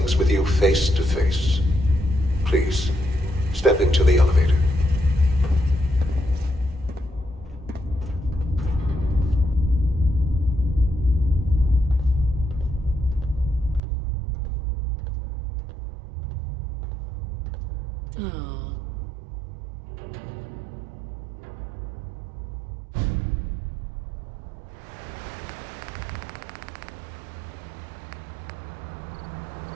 with you face to face. Please, step into the elevator. Oh.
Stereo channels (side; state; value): left; drops out; at 13.8 s